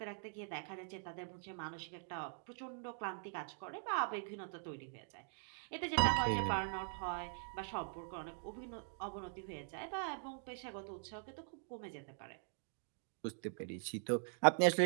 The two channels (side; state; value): left; silent; digital silence